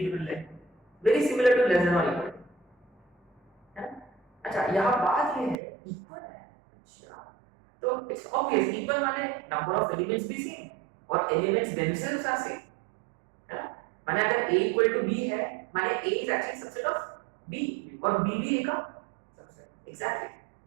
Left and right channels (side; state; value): left; drops out; at 5.6 s